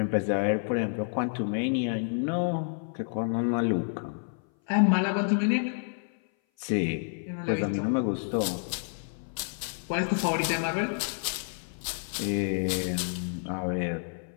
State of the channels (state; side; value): silent; right; 57 dB below the other